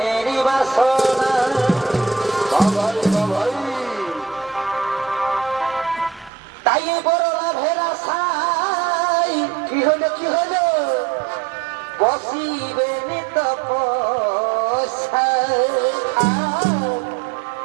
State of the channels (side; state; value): left; drops out; at 6.3 s